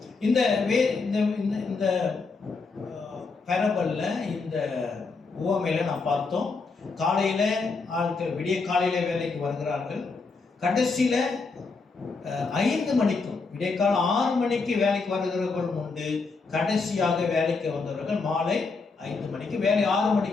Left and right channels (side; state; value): right; quieter; 4.3 dB